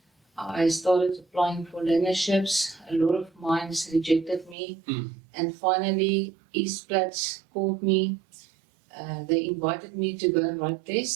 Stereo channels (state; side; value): drops out; left; at 4.5 s